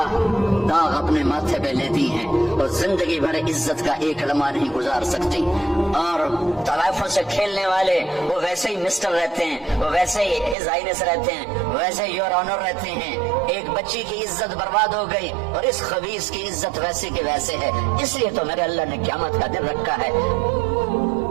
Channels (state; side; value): drops out; left; at 10.6 s